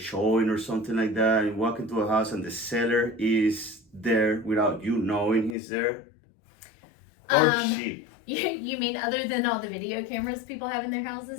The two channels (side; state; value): right; drops out; at 5.6 s